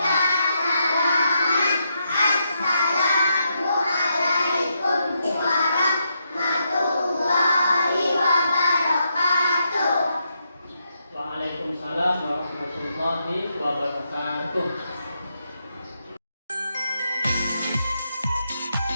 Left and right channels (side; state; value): both; inverted; correlation -0.81